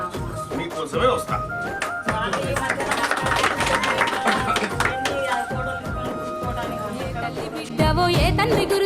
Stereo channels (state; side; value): identical; both; correlation 1.00